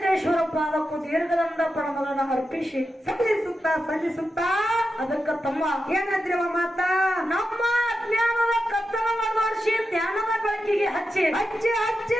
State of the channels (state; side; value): normal; both; correlation 0.89